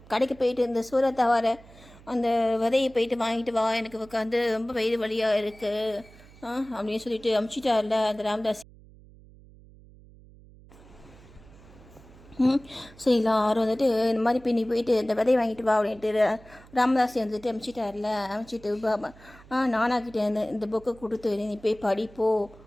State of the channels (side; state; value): right; noise; hum, 23 dB below the sound